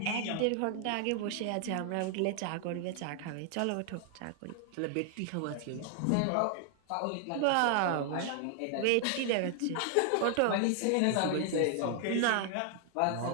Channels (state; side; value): different; both; correlation 0.00